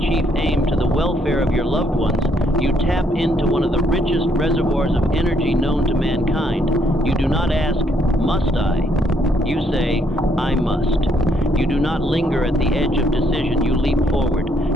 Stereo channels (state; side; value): normal; both; correlation 0.71